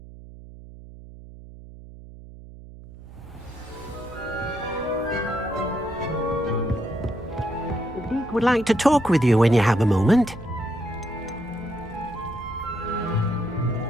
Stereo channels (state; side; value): noise; right; hum, 17 dB below the sound